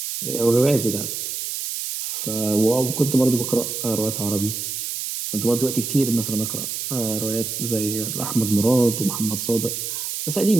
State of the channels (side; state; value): right; noise; hiss, 4 dB below the sound